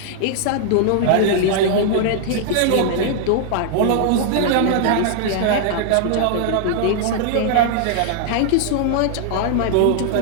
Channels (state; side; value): different; both; correlation -0.01